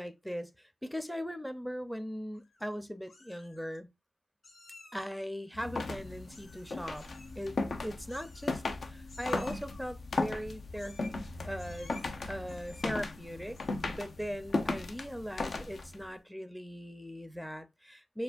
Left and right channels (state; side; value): normal; both; correlation 0.95